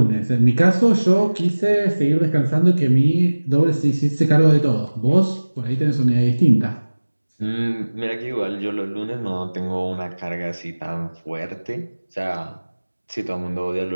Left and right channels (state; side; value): inverted; both; correlation -1.00